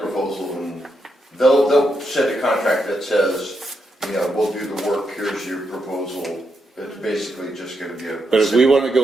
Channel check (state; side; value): normal; both; correlation 0.82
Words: Proposal, and they'll set a contract that says, you know, we'll do the work, here's your proposal. It's basically just gonna be a. but if we want to